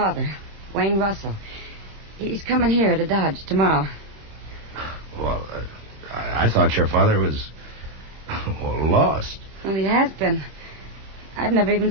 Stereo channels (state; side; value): late; left; 26 ms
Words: Wayne Russell. He's coming here to Dodge tomorrow. Well, I thought your father was... Well, lost. Well, he has been. I've never even